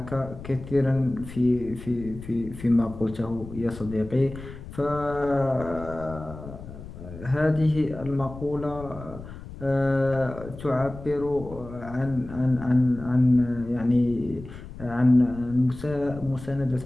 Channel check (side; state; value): left; noise; rumble, 14 dB below the sound